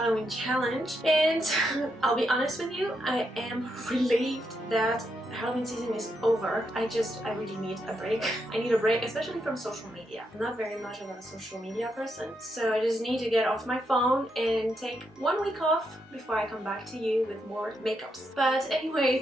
challenge, and I'll be honest with you, I am relieved that Halloween season is over. I really need a break. I need a break, especially from social media. I'm not very much of a social media person, so I just need to get off my phone and take 1 week off before I come back to you with more makeups. But anyway,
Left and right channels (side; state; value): both; normal; correlation 0.81